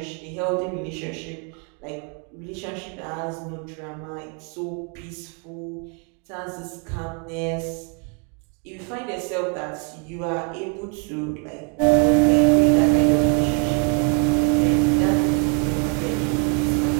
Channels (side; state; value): left; quieter; 38.6 dB